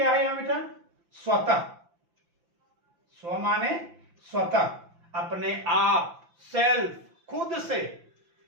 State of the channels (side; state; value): left; late; 5.9 ms